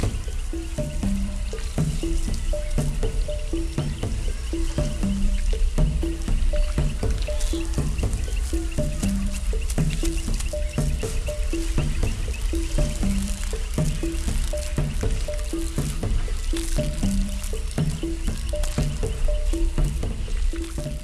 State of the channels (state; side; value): identical; both; correlation 1.00